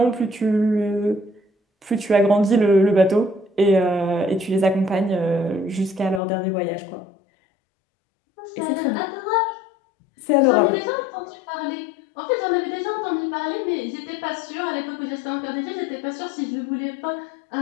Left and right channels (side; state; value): right; drops out; at 6.2 s